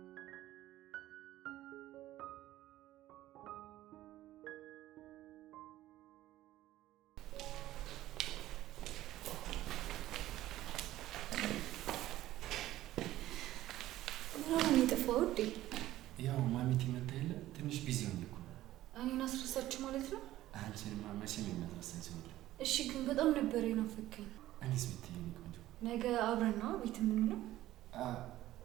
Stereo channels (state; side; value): quieter; left; 14.8 dB